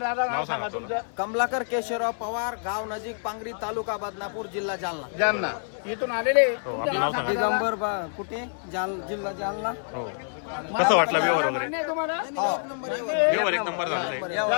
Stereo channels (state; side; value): silent; right; digital silence